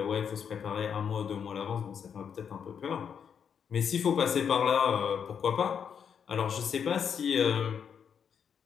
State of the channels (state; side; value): quieter; right; 7.4 dB